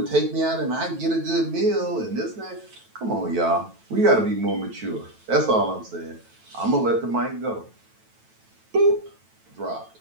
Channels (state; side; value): late; left; 9.1 ms